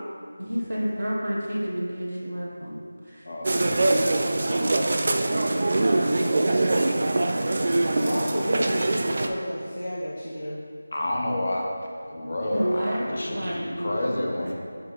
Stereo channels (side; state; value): both; inverted; correlation -0.97